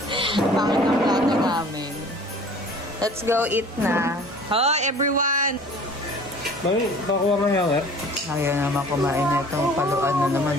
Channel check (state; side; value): normal; both; correlation 0.47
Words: Pangit ang plato namin. Let's go eat na. Hi, everyone! Bakit? Bakuha mo yung eh? Ayaw naman kumain na itong paluan na naman.